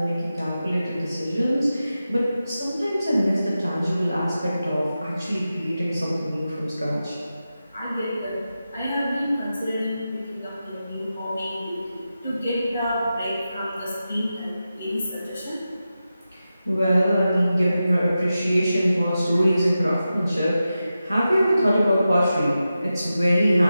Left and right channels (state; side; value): inverted; both; correlation -0.92